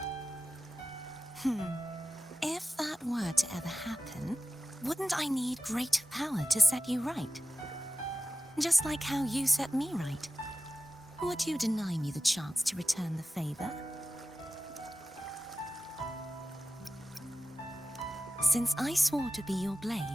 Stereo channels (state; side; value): normal; both; correlation 0.94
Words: If that were to ever happen, wouldn't I need greater power to set you right? Just like how you set me right. Would you deny me the chance to return the favor? Since I swore to be your